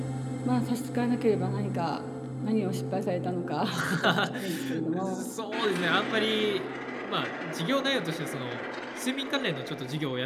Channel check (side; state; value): both; identical; correlation 1.00